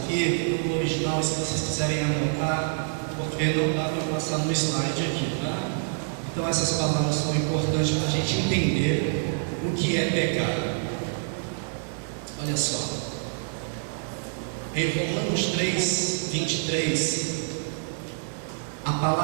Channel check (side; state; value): left; silent; 60 dB below the other